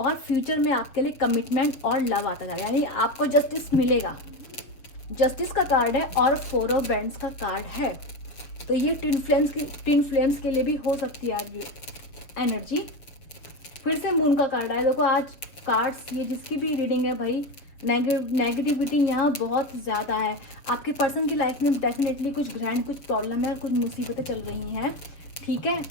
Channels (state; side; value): late; right; 6.9 ms